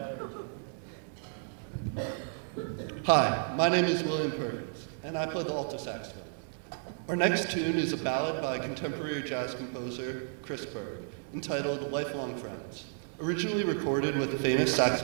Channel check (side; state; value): left; silent; 56 dB below the other